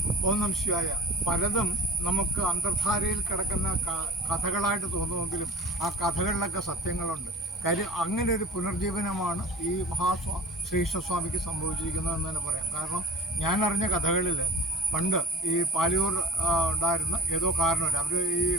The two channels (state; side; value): normal; both; correlation 0.44